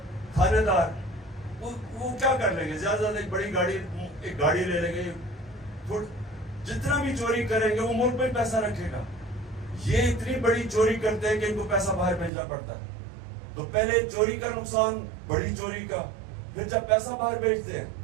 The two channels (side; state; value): left; drops out; at 12.3 s